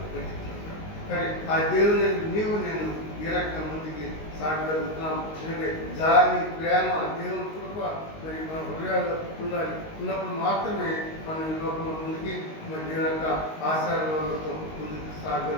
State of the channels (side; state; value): right; late; 19 ms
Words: పెట్టించుకుంటాడు. కానీ ఆ దేవుని నీవు నేను ఈ రకంగా ముందుకి సాగలుగుతున్నాం. ఎందుకంటే జాలి ప్రేమ దేవుని కృప మరి మన హృదయాలు ఉండాలి. ఉన్నప్పుడు మాత్రమే మనం ఈ లోకంలో ముందుకి మరి దేవుని యొక్క ఆశీర్వాదాలతో ముందుకు